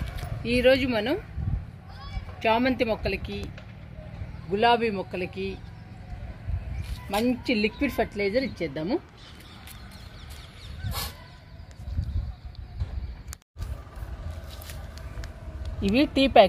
ఈరోజు మనం చామంతి మొక్కలకి, గులాబీ మొక్కలకి మంచి లిక్విడ్ ఫర్టిలైజర్ ఇచ్చేద్దాము. ఇవి టీ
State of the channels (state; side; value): identical; both; correlation 1.00